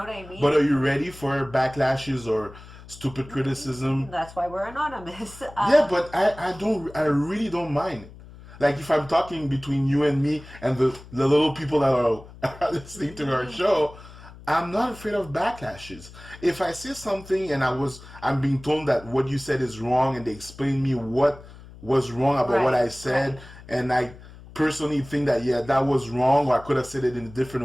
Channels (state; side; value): noise; left; hum, 19 dB below the sound